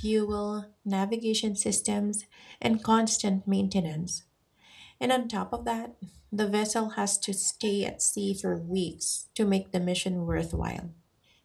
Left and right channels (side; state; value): both; identical; correlation 1.00